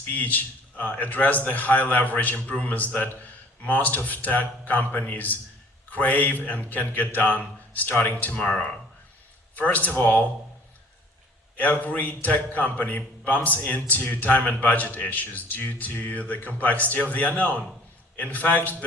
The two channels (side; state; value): both; normal; correlation 0.52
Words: address the high leverage improvements that most of tech companies crave and can get done starting tomorrow. First of all, every tech company bumps into time and budget issues due to the complexity of the unknown. In fact,